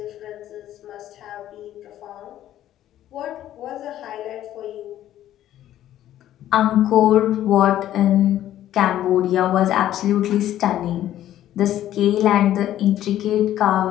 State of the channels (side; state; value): right; quieter; 12.5 dB